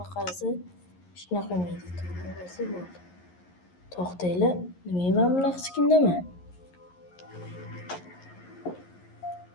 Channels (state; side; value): late; right; 11 ms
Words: qarasa shunaqa qilmaydi. To'g'risi bo'ldi. To'xtanglar, nimaga men bunaqa chiqindaman?